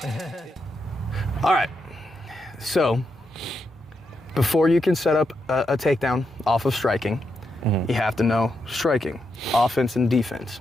all right. So, before you can set up a takedown off of striking, you have to know striking, offense and defense,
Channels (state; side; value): normal; both; correlation 0.83